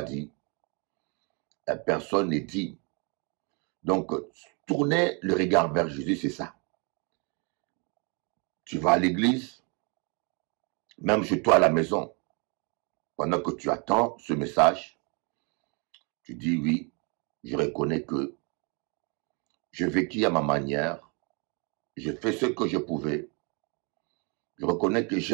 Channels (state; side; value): quieter; left; 33.9 dB